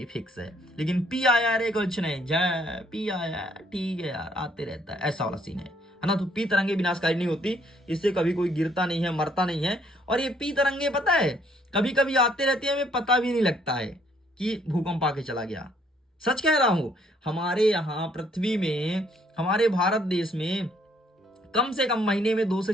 फिक्स है। लेकिन पी आया रे कुछ नहीं, जय पी आया ठीक है यार, आते रहता है, ऐसा वाला सीन है ना। तो पी तरंगे विनाशकारी नहीं होती, इससे कभी कोई गिरता नहीं है, मरता नहीं है। और ये पी तरंगे पता है कभी कभी आते रहते हैं, हमें पता भी नहीं लगता है कि भूकंप आके चला गया। सच कह रहा हूं, हमारे यहाँ पृथ्वी में, हमारे भारत देश में कम से कम महीने में 2 से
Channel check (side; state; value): both; normal; correlation 0.66